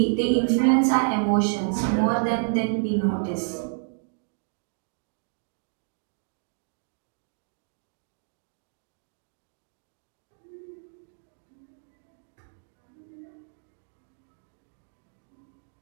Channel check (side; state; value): left; silent; 58 dB below the other